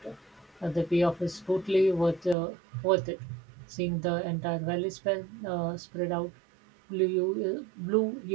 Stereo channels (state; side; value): drops out; left; at 2.4 s